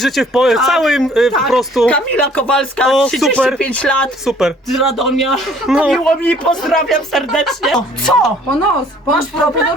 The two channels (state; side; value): normal; both; correlation 0.57